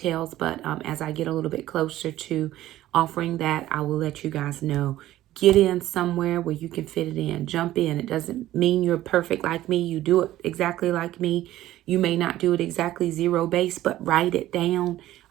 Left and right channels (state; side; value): quieter; left; 14.5 dB